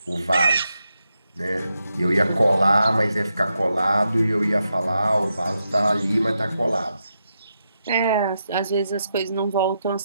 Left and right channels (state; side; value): inverted; both; correlation -0.85